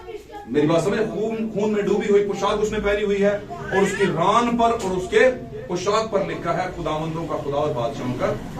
मेरी बात समझे? खून में डूबी हुई पोशाक उसने पहनी हुई है, और उसकी रान पर और उसके पोशाक पर लिखा है खुदावंदों का खुदा और बादशाहों का।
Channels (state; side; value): identical; both; correlation 1.00